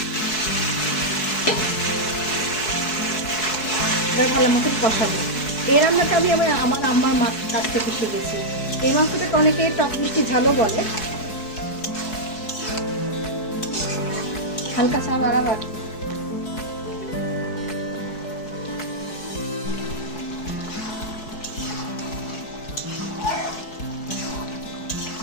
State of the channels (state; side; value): late; right; 4.6 ms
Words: ভালো মতো কষাবো। এই রান্নাটা আমি আমার আম্মার মাছ কাছ থেকে শিখেছি। এই মাংসটাকে অনেকে টক মিষ্টি ঝালও বলে। হালকা চা বাড়াবার